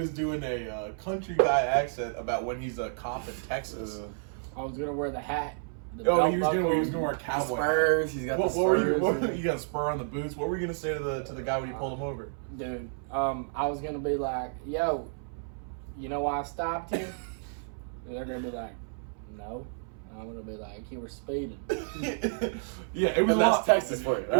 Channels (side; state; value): left; silent; 57 dB below the other